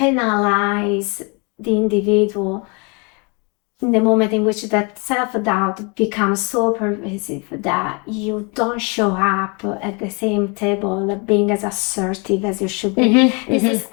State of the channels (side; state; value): right; quieter; 32.0 dB